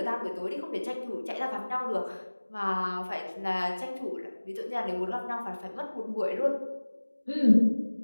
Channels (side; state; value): both; inverted; correlation -1.00